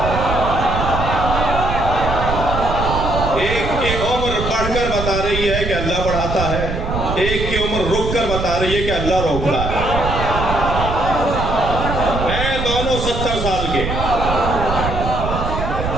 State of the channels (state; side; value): noise; right; rumble, 4 dB below the sound